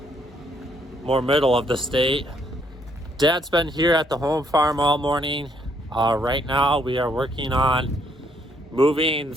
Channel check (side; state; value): both; normal; correlation 0.70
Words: more middle of the state. Dad's been here at the home farm all morning. Right now we are working on moving